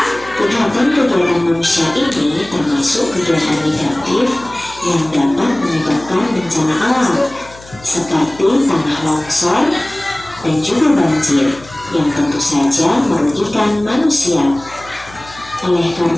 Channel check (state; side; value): noise; left; hum, 21 dB below the sound